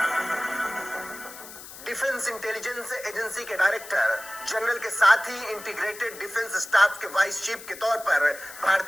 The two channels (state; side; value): noise; left; hiss, 15 dB below the sound